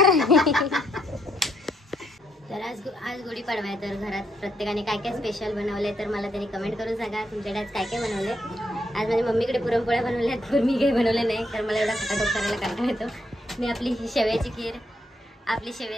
तर आज गुढीपाडवा आहे. तर घरात प्रत्येकाने काय काय स्पेशल बनवले तर मला त्यांनी कमेंट करून सांगा. तुमच्याकडे आज काय काय बनवले. आज माझ्या मम्मीकडे पुरणपोळ्या बनवल्यात, पण मी काही बनवले नाही कारण मला एवढा खटाटोप करायला कंटाळा येतो. मी आपली शेवयाची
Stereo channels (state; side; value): normal; both; correlation 0.75